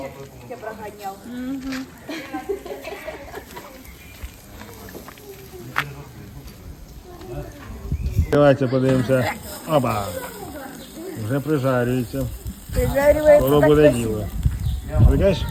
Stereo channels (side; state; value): both; identical; correlation 1.00